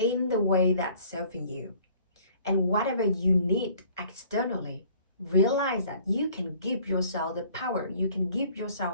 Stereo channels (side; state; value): both; inverted; correlation -0.55